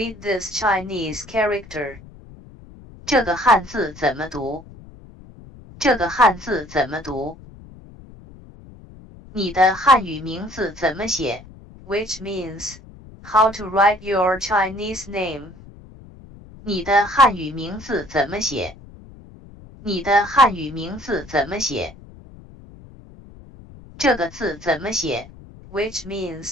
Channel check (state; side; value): noise; left; rumble, 20 dB below the sound